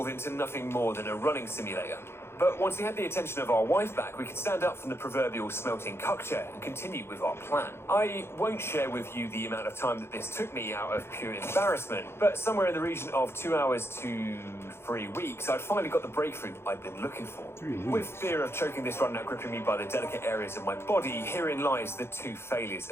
into nothing more than a running simulator. But once we had the attention of our wife back, we could stand up from the proverbial smelting cuck chair and continue with our plan. I won't share with you the amount of time that this took me out of pure embarrassment, but somewhere in the region of 2 hours to 3 weeks, I'd finally got the breakthrough I'd been looking for. With fear of choking this run out gripping me by the delicate areas of my body, herein lies the 2 failures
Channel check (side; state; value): right; late; 0.12 ms